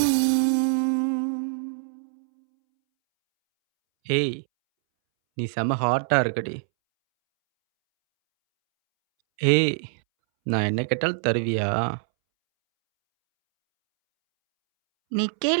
ஏய், நீ செம ஹாட்டாக இருக்கடி. ஏய், நான் என்ன கேட்டாலும் தருவியா? நீ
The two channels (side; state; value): left; silent; 62 dB below the other